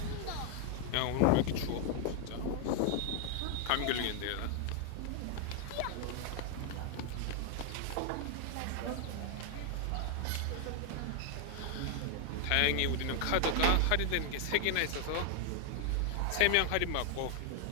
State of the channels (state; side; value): different; both; correlation 0.00